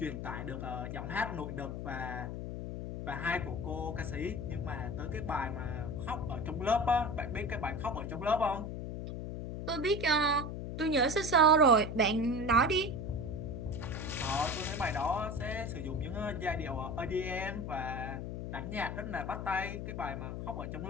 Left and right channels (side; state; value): left; noise; hum, 5 dB below the sound